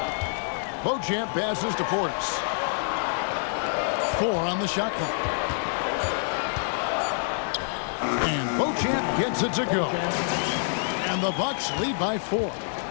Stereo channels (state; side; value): silent; right; digital silence